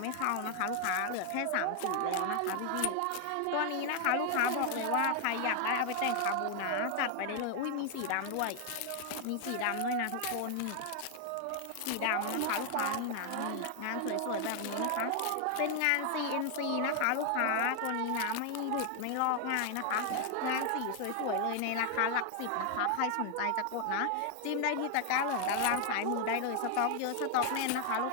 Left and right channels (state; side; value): different; both; correlation 0.00